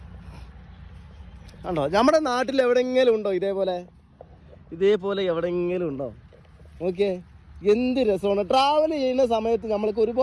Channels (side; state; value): both; identical; correlation 1.00